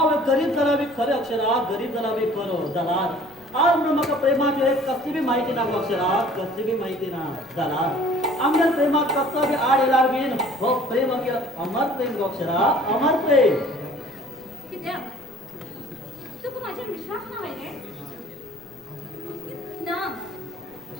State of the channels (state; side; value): noise; left; rumble, 29 dB below the sound